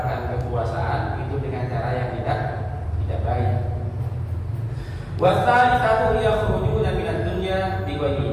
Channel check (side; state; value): both; identical; correlation 1.00